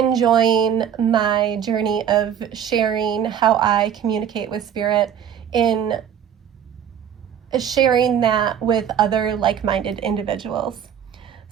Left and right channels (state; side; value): quieter; left; 9.0 dB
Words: my journey of sharing how I communicate with spirit, in sharing that with other like-minded individuals.